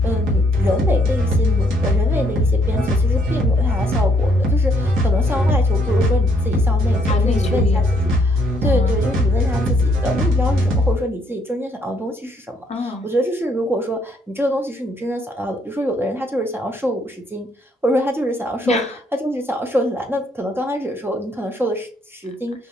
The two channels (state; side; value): normal; both; correlation 0.69